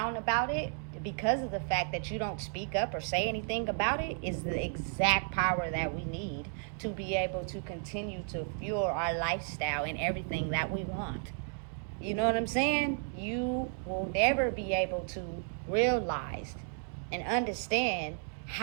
about it because of the fact that you don't speak up or say anything about it, is the exact power that we need to be able to continue to fuel our lifestyle and everything that we want. You know what I'm saying? You will never be able to realize and understand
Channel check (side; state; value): left; silent; 56 dB below the other